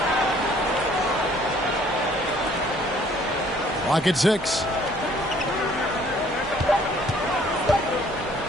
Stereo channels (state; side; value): normal; both; correlation 0.59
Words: Clock at 6.